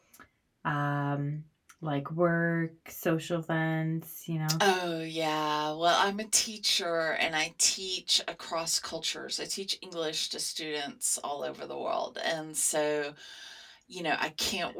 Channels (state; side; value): identical; both; correlation 1.00